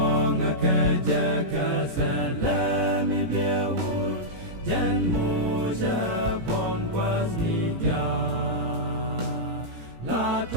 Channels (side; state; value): left; late; 17 ms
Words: ka ja ka sa la mi be u jan mo ja pon was ni ja la